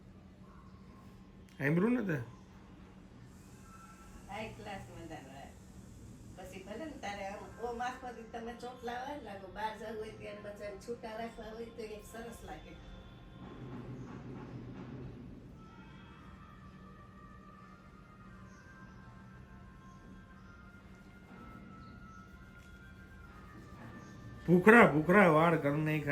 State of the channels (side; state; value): both; identical; correlation 1.00